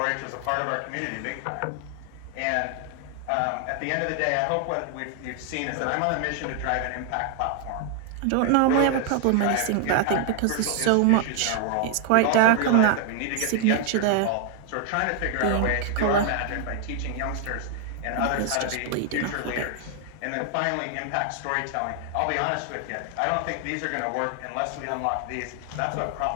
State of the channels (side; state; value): both; different; correlation 0.00